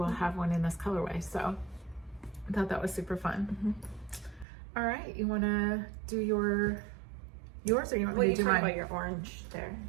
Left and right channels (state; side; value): drops out; left; at 4.5 s